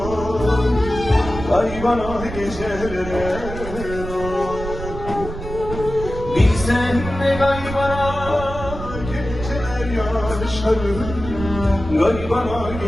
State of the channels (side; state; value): right; noise; rumble, 9 dB below the sound